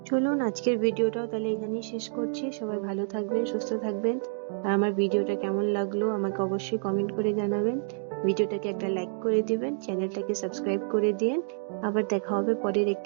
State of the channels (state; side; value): silent; left; digital silence